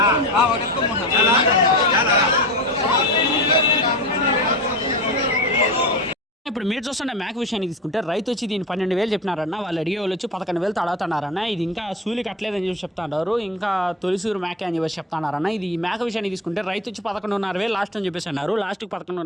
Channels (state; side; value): normal; both; correlation 0.28